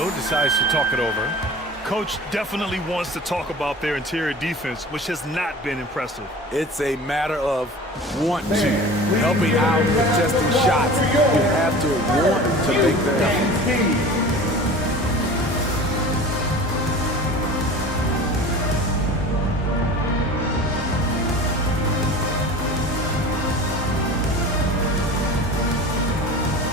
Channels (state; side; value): normal; both; correlation 0.38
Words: decides to talk it over. Coach definitely wants to talk about their interior defense, which has not been impressive. It's a matter of want to, helping out, contesting shots. You have to want to make the effort.